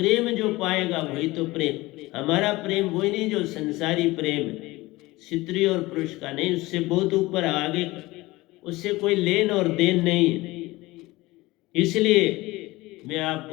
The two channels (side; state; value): right; quieter; 20.1 dB